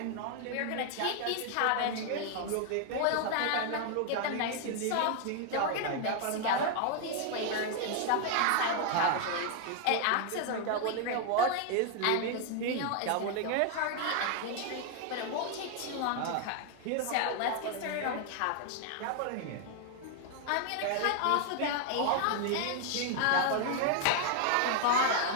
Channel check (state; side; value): different; both; correlation 0.00